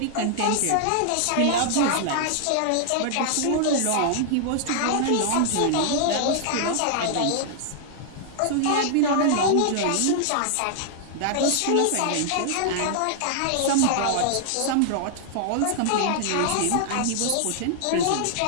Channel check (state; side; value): different; both; correlation -0.01